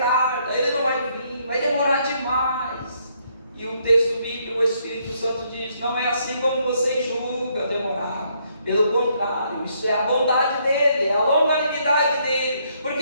ele não vai vir, vai demorar demais. E o texto bíblico, o Espírito Santo diz: não é assim como você julga demorar. Pelo contrário, isso é a bondade dele, é a longanimidade dele, porque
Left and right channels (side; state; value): both; inverted; correlation -0.71